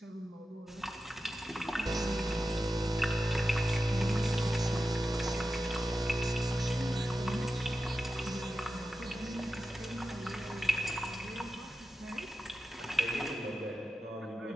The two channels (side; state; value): both; normal; correlation 0.92